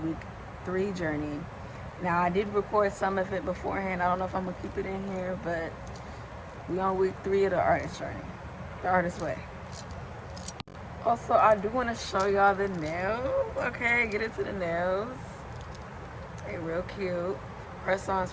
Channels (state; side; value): identical; both; correlation 1.00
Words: 3 journey. Now, I did record some of it beforehand. I don't know if I'm gonna keep it in here, but we on week 3 of the artist journey, the artist way. Also, I do want to show y'all the nails. Okay, get into the nails. They real cute.